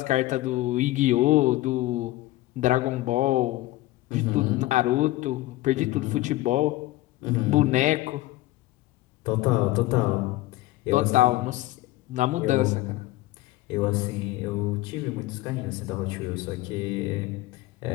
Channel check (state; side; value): quieter; right; 17.5 dB